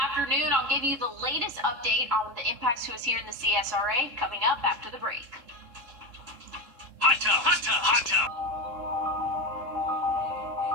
afternoon. I'll give you the latest update on the impacts to us here in the CSRA coming up after the break. Hot tub, hot tub, hot tub.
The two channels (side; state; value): left; late; 3.7 ms